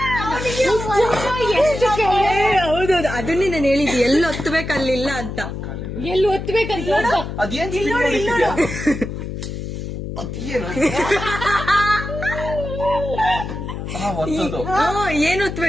ಹೌದೌದು, ಅದನ್ನೇ ನಾನು ಹೇಳಿದ್ದೆ. ಎಲ್ಲಿ ಒತ್ತಬೇಕಲ್ಲಿಲ್ಲ ಅಂತ. ಎಲ್ಲಿ ಒತ್ತಬೇಕಂತ ಅದೇನ್ ಒತ್ತದು? ಏನ್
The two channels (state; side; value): noise; left; hum, 6 dB below the sound